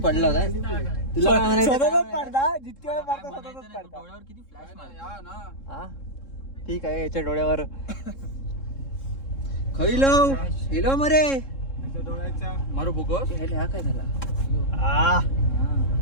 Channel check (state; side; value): late; right; 3.7 ms